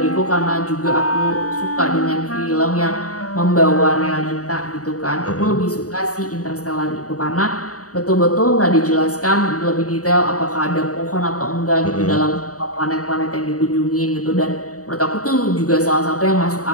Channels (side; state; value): right; late; 0.66 ms